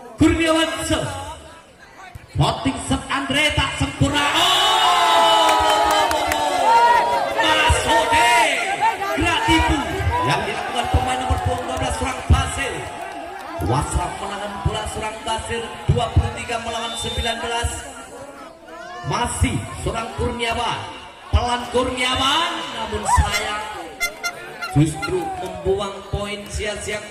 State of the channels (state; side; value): identical; both; correlation 1.00